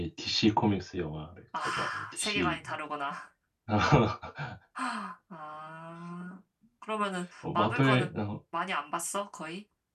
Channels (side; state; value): both; identical; correlation 1.00